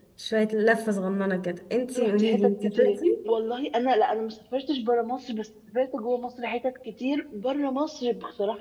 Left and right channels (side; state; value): both; identical; correlation 1.00